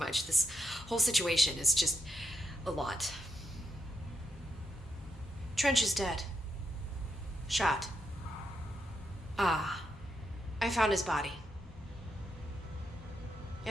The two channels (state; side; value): normal; both; correlation 0.82